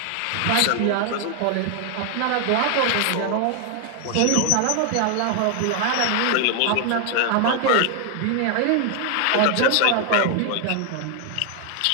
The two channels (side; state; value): both; different; correlation 0.00